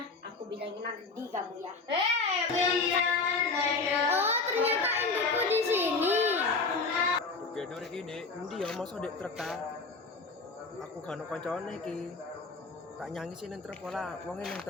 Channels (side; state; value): right; quieter; 4.0 dB